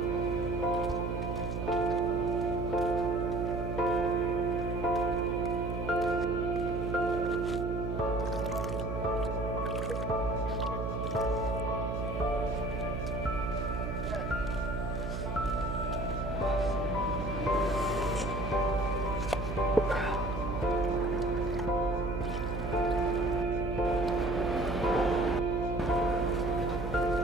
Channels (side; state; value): right; noise; hum, 4 dB below the sound